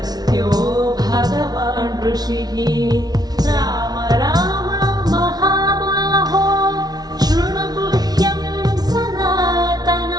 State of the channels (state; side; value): late; left; 0.19 ms